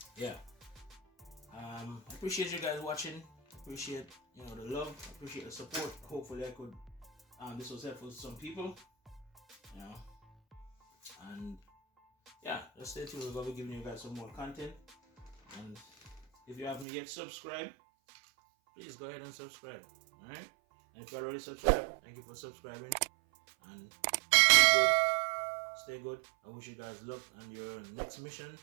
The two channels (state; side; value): drops out; left; at 16.9 s